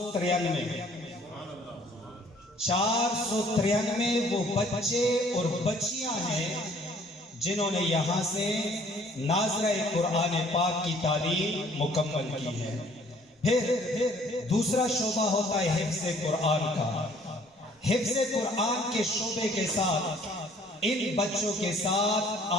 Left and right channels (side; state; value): both; normal; correlation 0.58